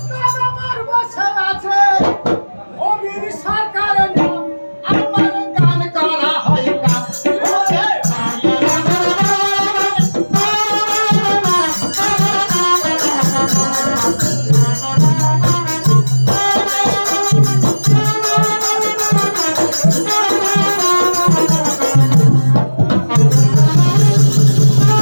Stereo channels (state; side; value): inverted; both; correlation -1.00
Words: আমার বসে আছে অমির সরকারের নাম আমার গান করা হয় গান ওরে